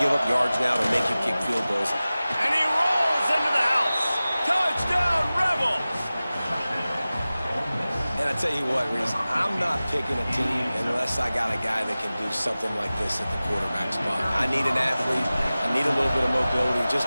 up yards now to make you kick field goals. And he rolls into the house. Touchdown, Rebels! And I tell you what, Reese, I'm not picking a team unless I got a guy that can do something like this at the quarterback spot. I need an athlete. I need a little bit of mobility. It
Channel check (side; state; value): both; inverted; correlation -0.97